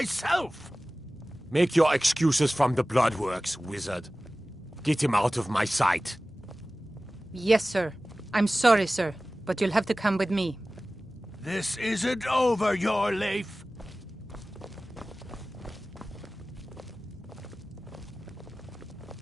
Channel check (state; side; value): normal; both; correlation 0.97